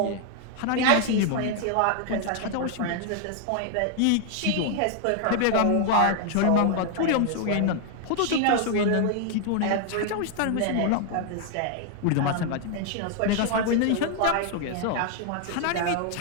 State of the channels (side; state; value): both; different; correlation 0.00